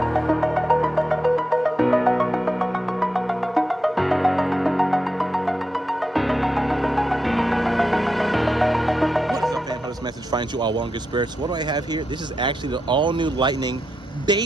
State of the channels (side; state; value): both; normal; correlation 0.86